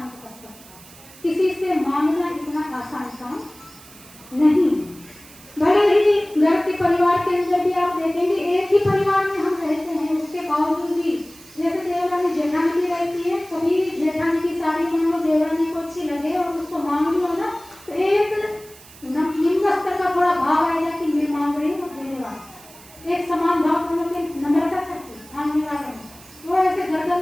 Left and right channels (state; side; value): noise; right; hiss, 21 dB below the sound